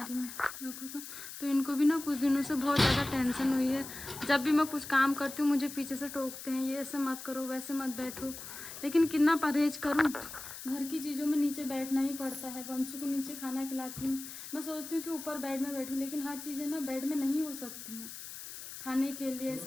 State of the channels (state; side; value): noise; left; hiss, 11 dB below the sound